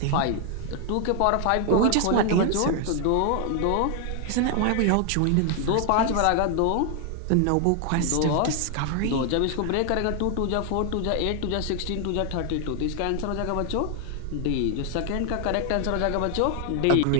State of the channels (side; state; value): both; different; correlation 0.00